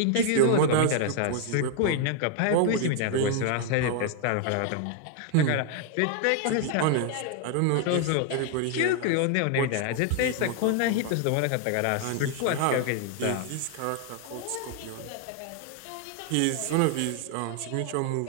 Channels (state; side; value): different; both; correlation 0.00